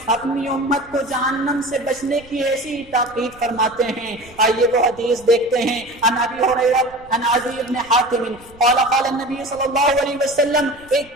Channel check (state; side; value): noise; right; rumble, 24 dB below the sound